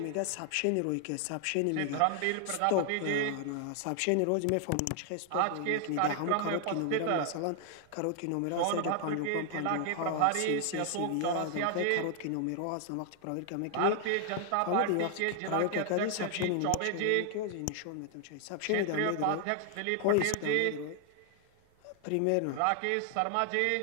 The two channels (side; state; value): both; different; correlation 0.00